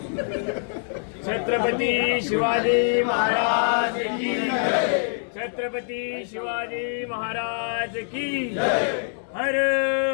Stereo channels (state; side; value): silent; right; digital silence